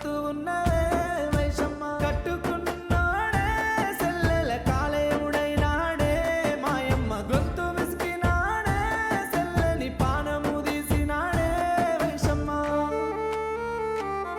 ఉన్నవే వైషమ్మ కట్టుకున్నాడే సెల్లెల కాలేవుడైనాడే మాయమ్మ గొంతు విసికినాడే సెల్లని పానము తీసినాడే వైషమ్మ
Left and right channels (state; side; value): identical; both; correlation 1.00